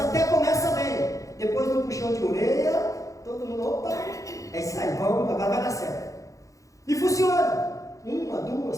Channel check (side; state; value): right; late; 0.16 ms